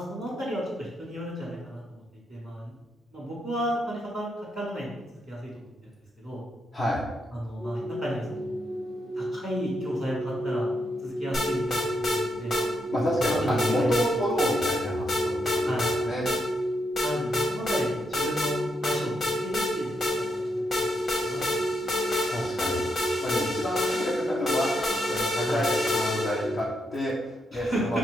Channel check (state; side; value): normal; both; correlation 0.81